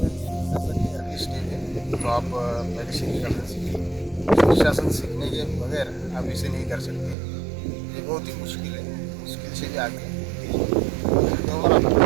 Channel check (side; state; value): left; drops out; at 7.2 s